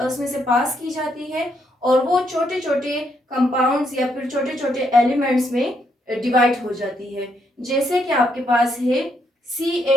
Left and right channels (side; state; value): both; normal; correlation 0.75